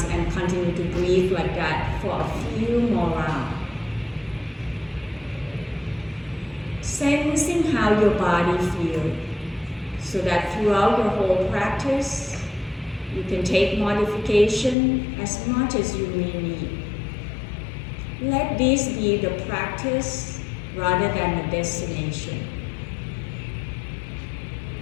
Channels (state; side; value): drops out; right; at 14.8 s